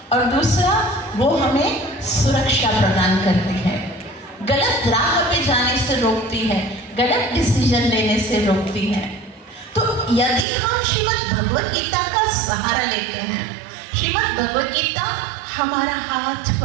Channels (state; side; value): drops out; left; at 10.5 s